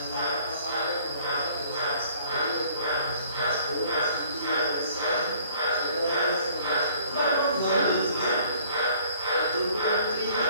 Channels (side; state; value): both; inverted; correlation -0.56